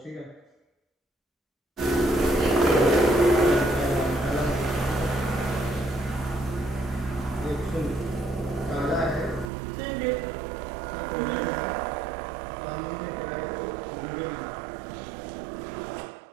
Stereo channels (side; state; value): left; drops out; at 9.5 s